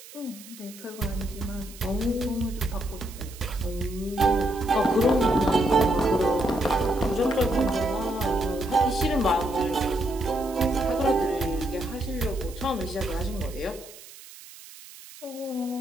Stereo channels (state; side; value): noise; right; hiss, 18 dB below the sound